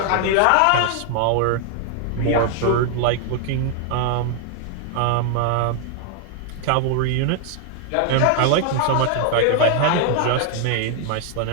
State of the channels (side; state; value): both; different; correlation 0.00